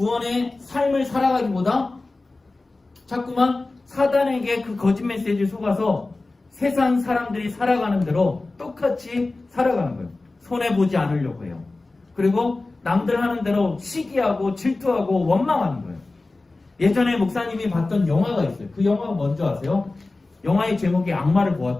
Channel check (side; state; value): right; quieter; 3.3 dB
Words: 삶을 살아가기보다 자꾸만 사단에게 그 거짓 메시지를 속아서 세상 사람들이 살아가는 대로 똑같이 살아가는 거예요. 손해보지 않으려고 해요. 그리고 남들 하는 대로 시기하고 질투하고 원망하는 거예요. 예전에 목사님이 봤던 영화가 있어요. 그 영화가 뭔지 아세요? 영화의 제목이 악마를